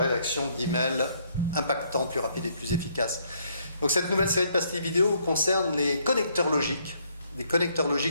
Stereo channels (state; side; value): inverted; both; correlation -0.69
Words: d'emails impactants, plus rapides et plus efficaces. Donc cette nouvelle série de pastilles vidéo concerne les connecteurs logiques. Les connecteurs